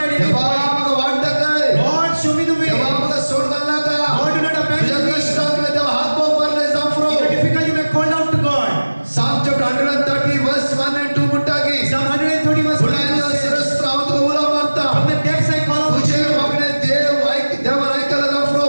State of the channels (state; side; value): inverted; both; correlation -1.00